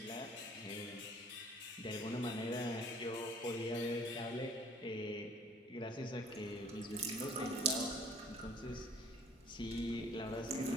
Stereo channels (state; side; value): normal; both; correlation 0.53